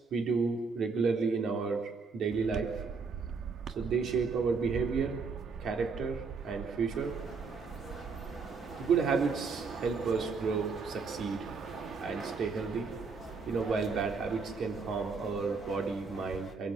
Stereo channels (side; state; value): left; quieter; 4.8 dB